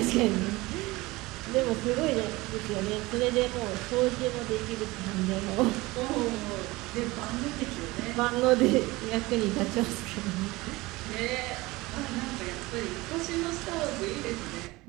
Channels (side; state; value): left; quieter; 21.1 dB